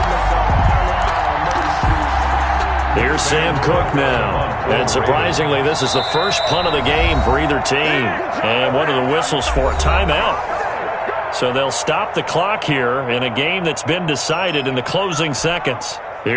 Here's Sam Cook now. And surprisingly, this is the first punt of the game for either team. And one of the whistles for a timeout. So they'll stop the clock here in a game that's been decided in the closing seconds.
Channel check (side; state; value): both; identical; correlation 1.00